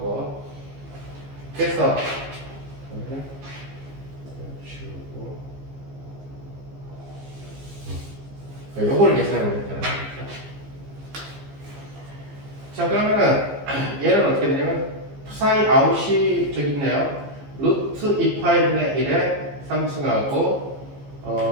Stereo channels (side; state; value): left; late; 15 ms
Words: 그래서 지우고 요거를 계산해 보겠다는 거죠. 자, 그러면은 얘는 어떻게 되냐면 사인 아웃이 저기 있네요. 루트 2파이분의 1에 3승하고